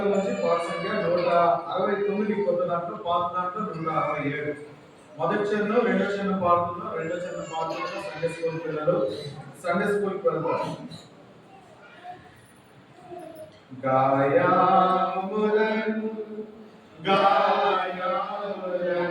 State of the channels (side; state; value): both; identical; correlation 1.00